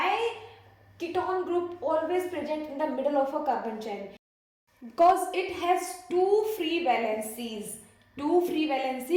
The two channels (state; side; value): identical; both; correlation 1.00